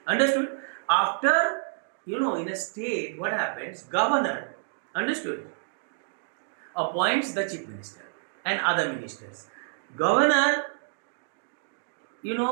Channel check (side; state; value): left; silent; digital silence